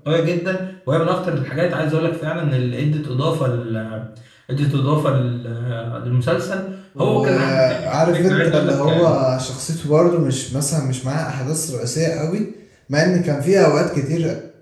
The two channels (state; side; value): identical; both; correlation 1.00